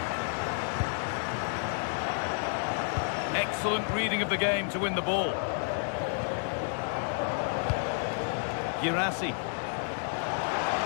Excellent reading of the game to win the ball. Girassi.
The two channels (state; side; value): silent; right; 57 dB below the other